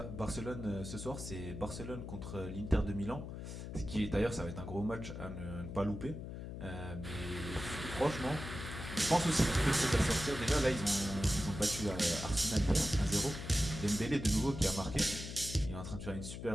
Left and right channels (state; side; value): noise; left; hum, 8 dB below the sound